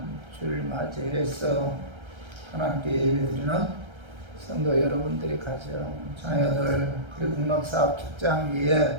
주를 맞이해서 하나님께 예배드리는 성도 여러분들이 가정, 자녀들, 그리고 국락사업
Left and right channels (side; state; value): left; late; 1.3 ms